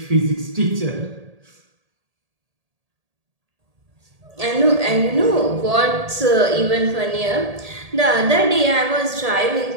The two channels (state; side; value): late; left; 1.8 ms